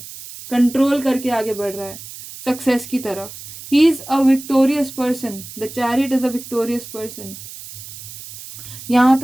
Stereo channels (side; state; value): right; noise; hiss, 14 dB below the sound